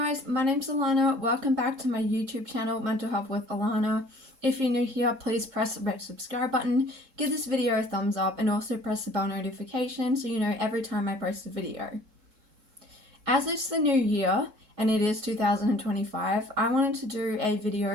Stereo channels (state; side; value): late; left; 3.7 ms